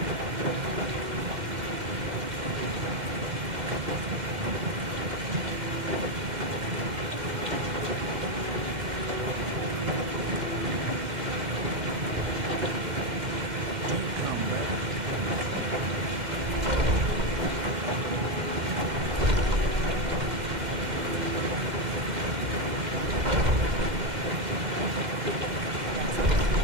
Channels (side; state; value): left; late; 2.1 ms